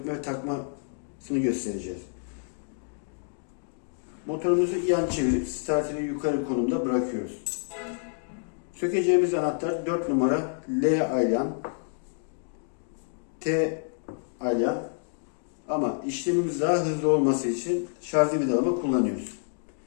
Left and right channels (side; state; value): right; silent; digital silence